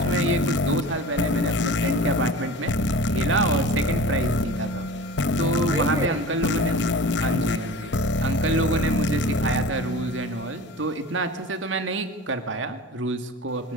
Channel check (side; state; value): both; normal; correlation 0.37